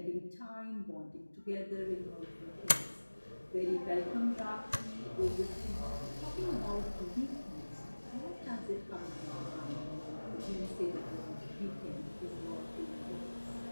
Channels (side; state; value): both; inverted; correlation -1.00